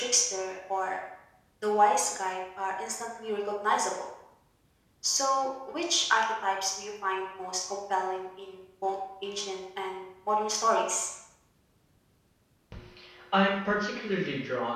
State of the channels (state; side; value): identical; both; correlation 1.00